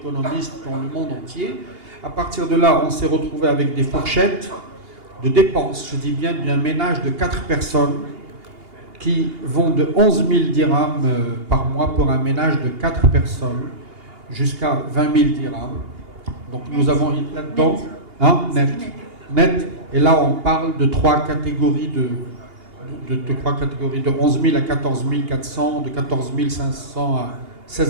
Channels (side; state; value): left; late; 2.8 ms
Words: dans le monde entier. À partir de là, on s'est retrouvé avec des fourchettes de dépenses, je dis bien d'un ménage de 4 personnes qui vont de 11 000 dirhams par mois pour un ménage de 4 personnes jusqu'à 20 000 dirhams. Donc nous avons là-dedans, net. Et là, on parle de 3 catégories de 11 000 à 14 400, de 14 500 à